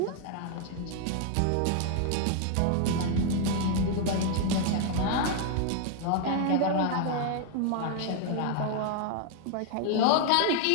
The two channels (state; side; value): different; both; correlation 0.00